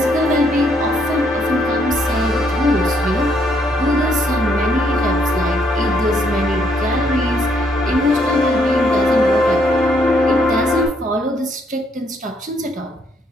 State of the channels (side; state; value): both; normal; correlation 0.71